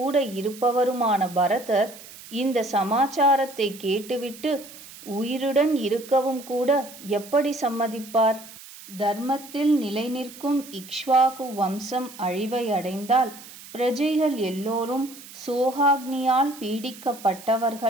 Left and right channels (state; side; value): noise; right; hiss, 17 dB below the sound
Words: இருப்பவருமான பரதர் இந்த சமாச்சாரத்தை கேட்டுவிட்டு உயிருடன் இருக்கவும் கூட எப்படி சம்மதிப்பார்? தர்மத்தில் நிலை நிற்கும் இக்ஷ்வாகு வம்சம் அழிவை அடைந்தால் பிரஜைகள் எல்லோரும் சோகாக்னியால்